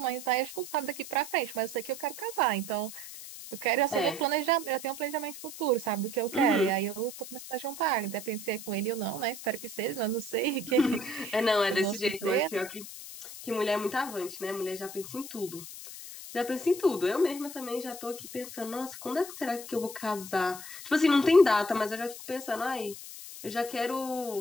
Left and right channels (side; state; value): left; noise; hiss, 12 dB below the sound